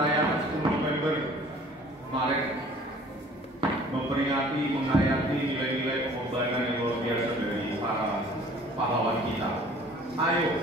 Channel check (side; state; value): both; normal; correlation 0.51